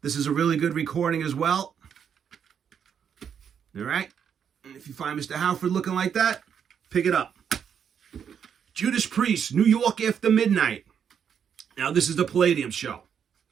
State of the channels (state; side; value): quieter; left; 7.9 dB